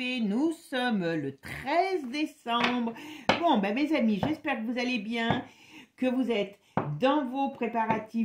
Nous sommes le 13 décembre. Bon, mes amis, j'espère que vous allez bien, que vous êtes dans vos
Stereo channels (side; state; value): both; identical; correlation 1.00